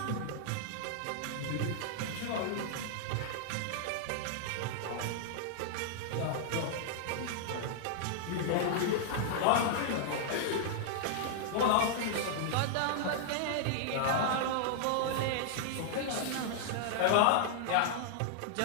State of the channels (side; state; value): both; different; correlation -0.01